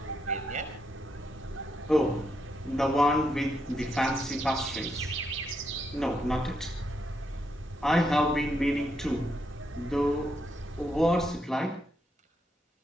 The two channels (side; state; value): both; normal; correlation 0.79